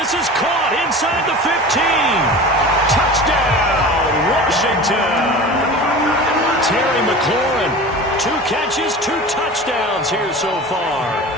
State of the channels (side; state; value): both; normal; correlation 0.35